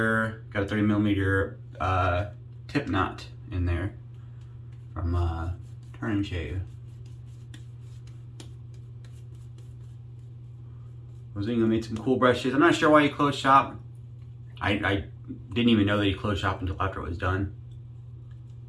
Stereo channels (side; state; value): both; identical; correlation 1.00